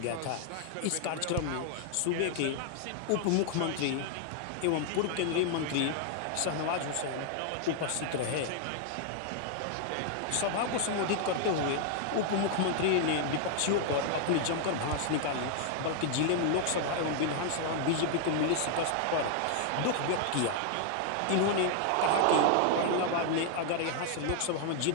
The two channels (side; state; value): both; different; correlation 0.00